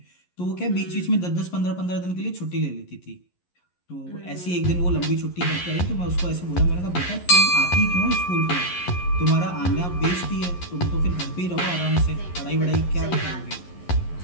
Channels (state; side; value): late; right; 11 ms